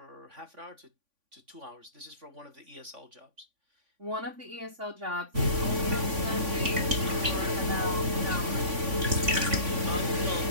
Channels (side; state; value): left; late; 3.5 ms